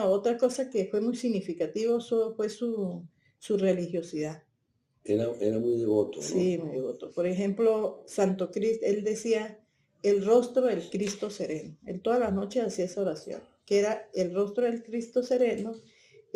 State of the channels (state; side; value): identical; both; correlation 1.00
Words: otra cosa que fue muy significativo fue su religiosidad. Era muy devoto, ¿no? Sí, muy devoto. Por ejemplo, Santo Cristo, él decía, el rostro del Cristo sereno. Él todas las noches hacía esa oración, que era el rostro del Cristo sereno,